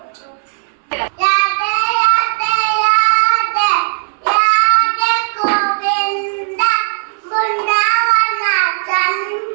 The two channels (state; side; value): silent; left; digital silence